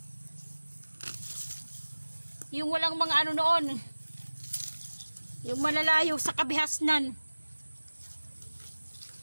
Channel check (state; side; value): inverted; both; correlation -1.00